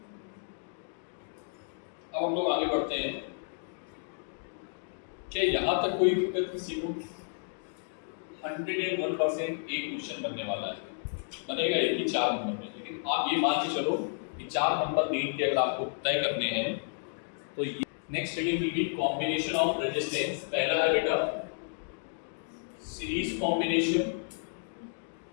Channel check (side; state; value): right; silent; digital silence